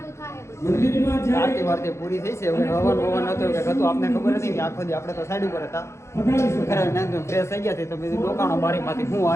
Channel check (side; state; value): right; late; 0.13 ms